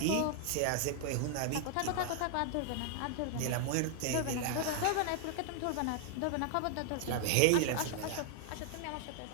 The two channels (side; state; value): both; different; correlation 0.00